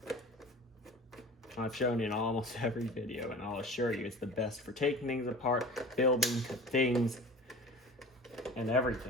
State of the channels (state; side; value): normal; both; correlation 0.39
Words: I've shown in almost every video, and I'll assure you it's the best for taking things apart, building things, and